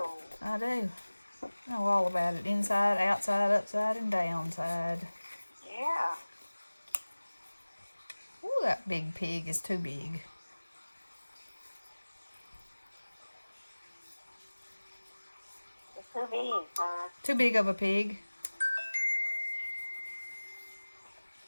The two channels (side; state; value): both; inverted; correlation -1.00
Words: I do. I know all about it. Inside, outside, upside, and downside. Yeah. Ooh, that big pig is too big. It's too big, huh? Too big of a pig.